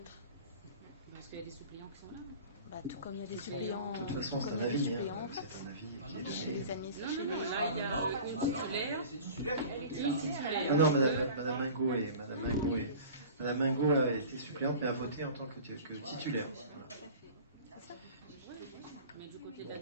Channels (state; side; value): inverted; both; correlation -0.40